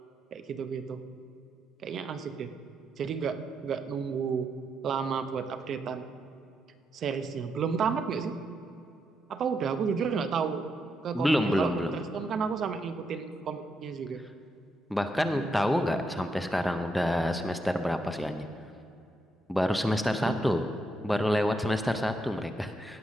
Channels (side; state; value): both; normal; correlation 0.81